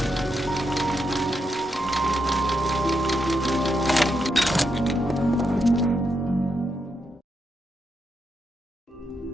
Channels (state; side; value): normal; both; correlation 0.82